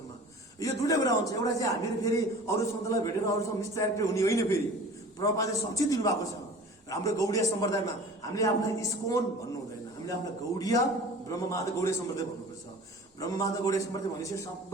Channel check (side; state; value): both; normal; correlation 0.42